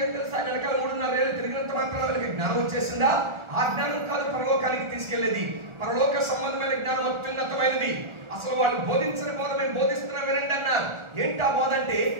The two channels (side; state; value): left; late; 1.4 ms